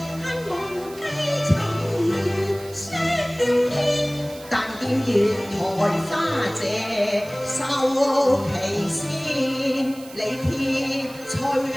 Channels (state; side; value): noise; right; hiss, 19 dB below the sound